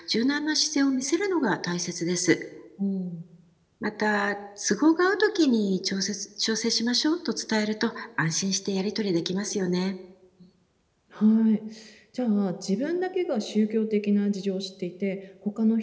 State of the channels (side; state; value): both; identical; correlation 1.00